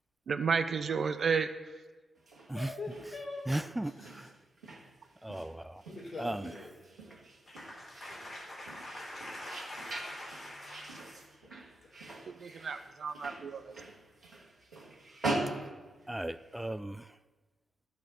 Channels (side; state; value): left; quieter; 3.1 dB